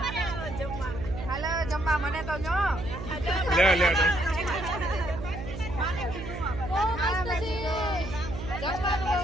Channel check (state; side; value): noise; right; hum, 8 dB below the sound